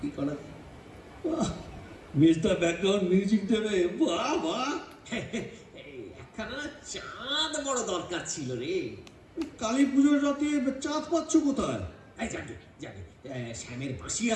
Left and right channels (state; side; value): identical; both; correlation 1.00